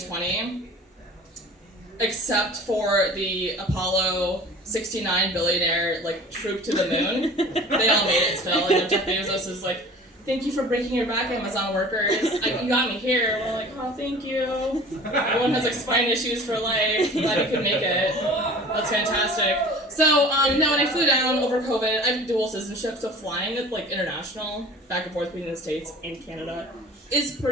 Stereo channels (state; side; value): normal; both; correlation 0.43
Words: Except for the Apollo 69 billionaire, troop to the moon. They all made it still, and Jeff Bezos is like, thank you for breaking your back, Amazon workers. You got me here. We're like, oh, thank you. Everyone has, spine issues for life. Glad you could make it. That's fantastic. So, when I flew down over COVID, I have dual citizenship, so flying, international, back and forth between the States and Canada, is